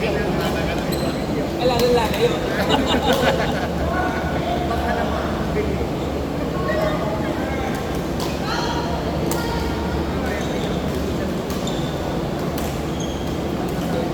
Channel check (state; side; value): identical; both; correlation 1.00